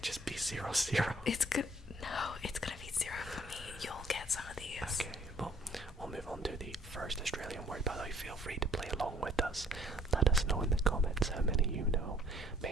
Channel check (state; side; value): normal; both; correlation 0.58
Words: just be 0-0. It's good. No, it's gonna be 0 for me. You'll get some of these. Okay, well, we'll move on to the first Australian word. By the way, feel free to play along with us. Let us know in the comments how many you know.